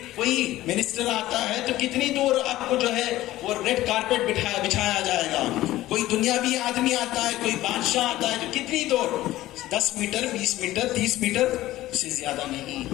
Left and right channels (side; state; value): right; quieter; 15.7 dB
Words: کوئی منسٹر آتا ہے تو کتنی دور آپ کو جو ہے وہ ریڈ کارپیٹ بچھایا جائے گا، کوئی دنیاوی آدمی آتا ہے، کوئی بادشاہ آتا ہے تو کتنی دور، 10 میٹر 20 میٹر 30 میٹر سے زیادہ نہیں۔